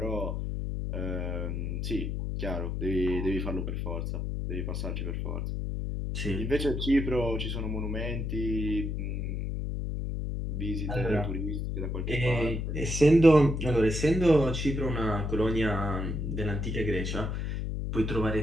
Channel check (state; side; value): noise; left; hum, 2 dB below the sound